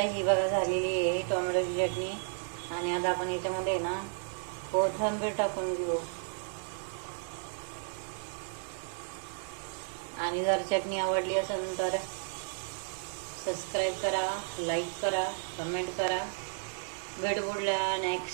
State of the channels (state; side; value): silent; left; digital silence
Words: ही बघा झालेली आहे टोमॅटोची चटणी. आणि आता आपण याच्यामध्ये ना कोथिंबीर टाकून घेऊ. आणि जर चटणी आवडली असेल तर सबस्क्राईब करा, लाईक करा, कमेंट करा. भेटू पुढल्या